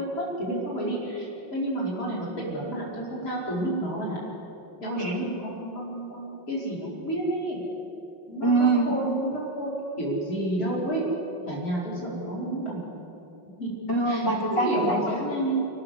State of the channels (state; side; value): late; right; 5.5 ms